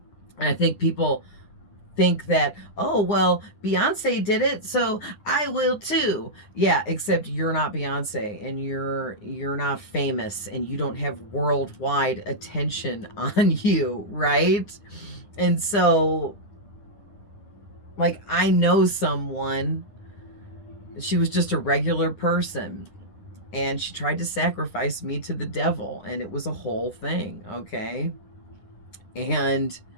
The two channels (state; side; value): late; right; 9.7 ms